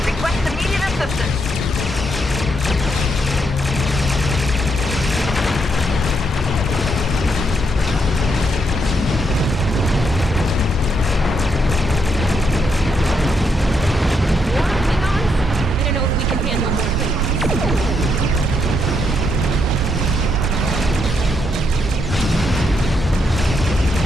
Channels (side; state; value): both; normal; correlation 0.77